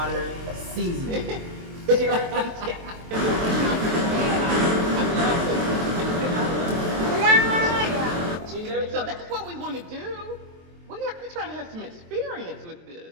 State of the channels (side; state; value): left; late; 23 ms